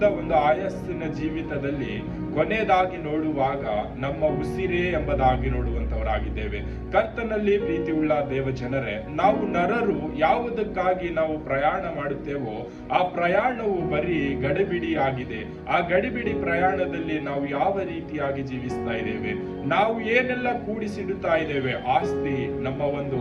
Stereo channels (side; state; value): both; identical; correlation 1.00